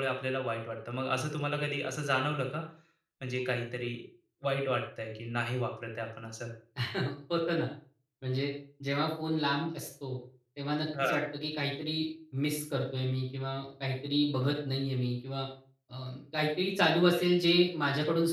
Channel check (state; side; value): identical; both; correlation 1.00